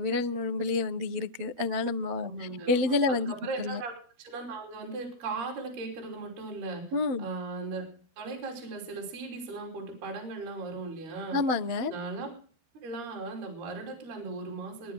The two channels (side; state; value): left; late; 12 ms